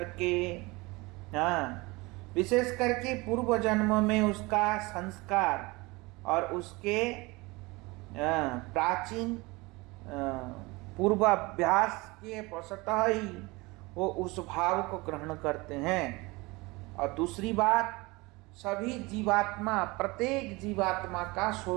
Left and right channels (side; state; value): left; quieter; 23.8 dB